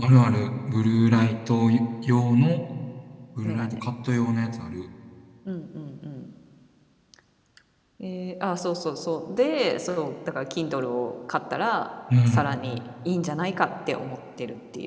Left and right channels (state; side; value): identical; both; correlation 1.00